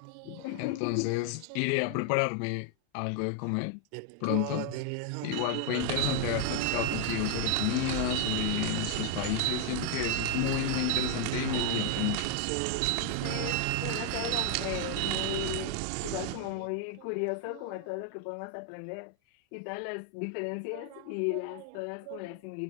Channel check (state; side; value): different; both; correlation 0.00